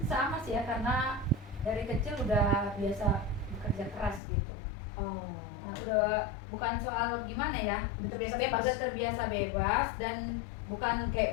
sama sih ya, karena dari kecil udah biasa bekerja keras gitu. oh Nah, udah bukan soal gimana ya, Udah terbiasa bebas. udah terbiasa bebas dan bukan kayak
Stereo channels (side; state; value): right; drops out; at 4.2 s